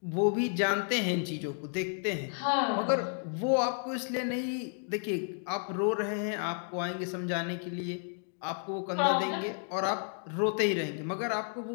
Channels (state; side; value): silent; right; 57 dB below the other